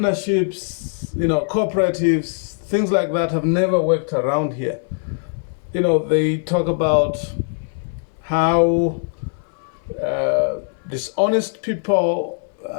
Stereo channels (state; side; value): silent; right; 61 dB below the other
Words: cooperatives, things like that have never worked around here. They talk about how dishonest people